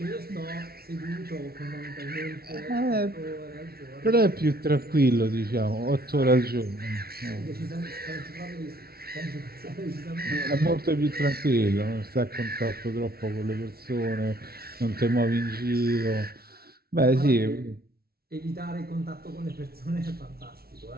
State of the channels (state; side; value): late; left; 0.44 ms